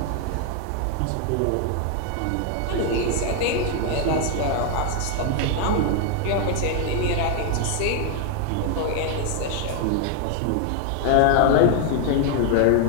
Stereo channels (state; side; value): different; both; correlation 0.00